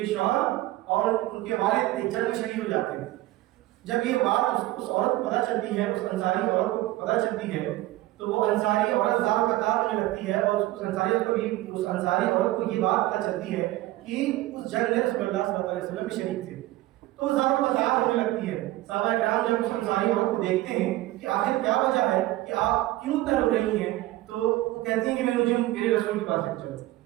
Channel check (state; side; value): quieter; left; 17.0 dB